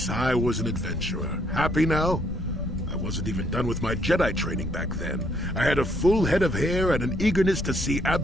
I was an adventurer. Happy now? I wasn't even done with my Jedi training back then. I had a full head of hair and an eagerness to see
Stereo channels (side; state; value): left; noise; rumble, 9 dB below the sound